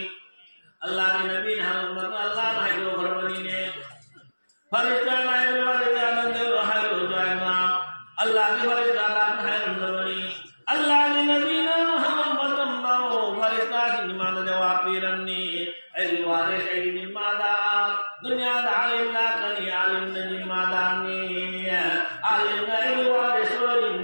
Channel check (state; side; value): inverted; both; correlation -1.00